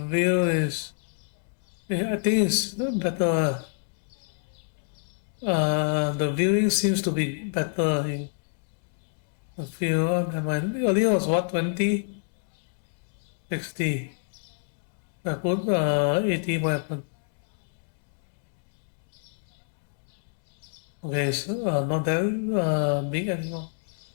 view is. Yeah, I think it's better. The viewing seems to be better in the view. Earlier was what 20, 60. I put 80. What happened? Okay, so not that big anymore.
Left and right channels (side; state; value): right; silent; digital silence